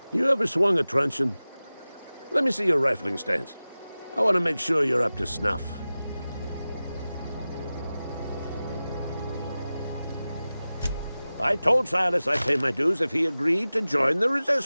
You ever swung a truncheon? Let me see your rifling stance. I want to make sure you're up to snuff. I told Silas I'd pay my dues if he agreed to join the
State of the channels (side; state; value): both; inverted; correlation -0.96